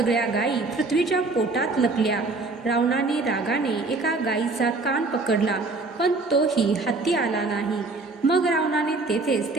गायी पृथ्वीच्या पोटात लपल्या. रावणाने रागाने एका गायीचा कान पकडला, पण तोही हाती आला नाही. मग रावणाने तेथेच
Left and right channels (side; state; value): left; quieter; 3.5 dB